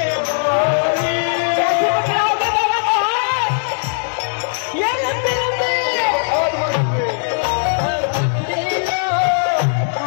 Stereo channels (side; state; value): right; silent; 61 dB below the other